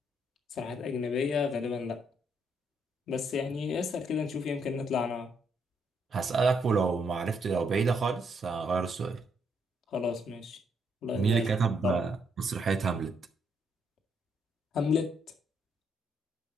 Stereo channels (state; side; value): normal; both; correlation 0.74